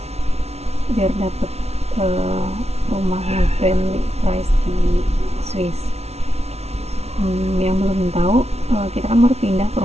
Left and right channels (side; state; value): left; late; 0.31 ms